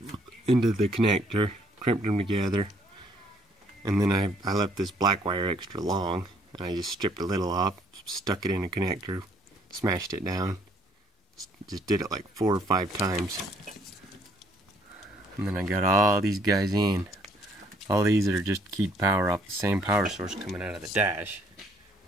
into the connector, crimped them together, and then I left this black wire extra long, and I just stripped a little off, stuck it in a connector, smashed it down, just did it like 4 or 5 times, and then I got all these guys in. All these are just keyed power off the same power source coming out of the dash.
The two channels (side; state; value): both; normal; correlation 0.65